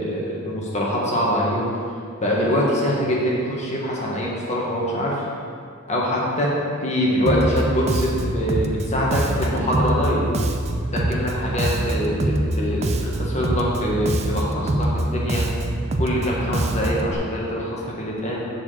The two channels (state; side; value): normal; both; correlation 0.50